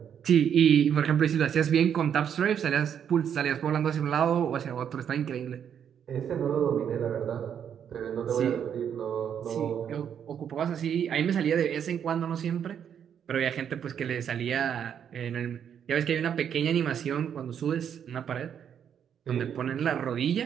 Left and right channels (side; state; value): left; quieter; 8.5 dB